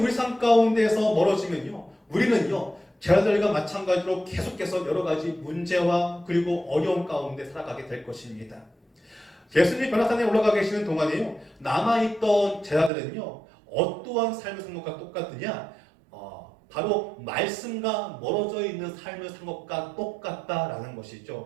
삶 가운데에서 멀어지면요, 우리는요, 제자들과 마찬가지로 계속해서 여러 가지 문제와 그리고 어려움 가운데 살아가게 될 것입니다. 예수님이 변화산에 올라가 계시는 동안에요, 남아있던 제자들은요, 어떠한 삶을 산 것과 똑같느냐? 바로 말씀과 멀어져 있는 삶을 산 것과 똑같다라는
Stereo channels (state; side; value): drops out; left; at 12.9 s